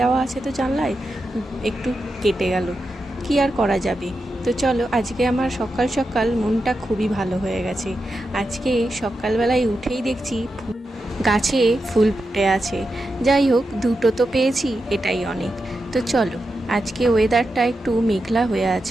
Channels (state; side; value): normal; both; correlation 0.88